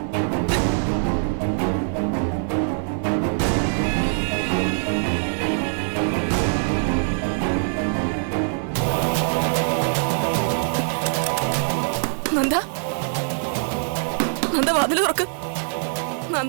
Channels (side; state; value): left; silent; digital silence